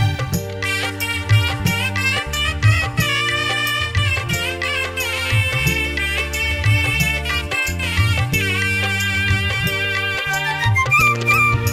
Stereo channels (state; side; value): identical; both; correlation 1.00